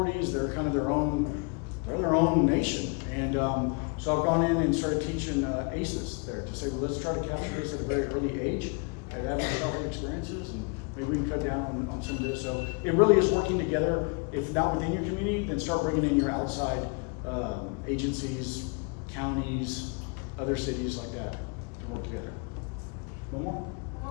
They're kind of their own nation. And so I've gone in and started teaching ACEs there to say, well, let's try to capture this at a very early age, at adverse childhood experiences, and maybe we can cut down on some of this. So it really is working together. If not within your community, then start bringing in your outside agencies, counties, other cities like that to work together. One more?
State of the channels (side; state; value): right; quieter; 34.5 dB